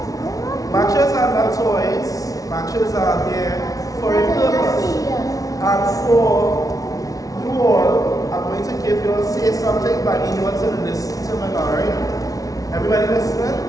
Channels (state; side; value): late; right; 0.18 ms